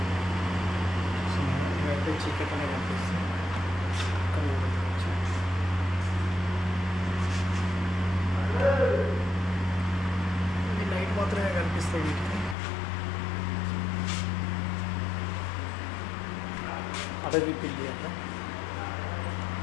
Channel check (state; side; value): drops out; right; at 12.6 s